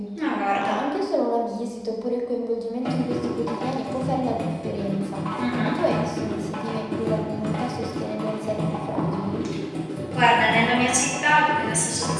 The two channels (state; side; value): identical; both; correlation 1.00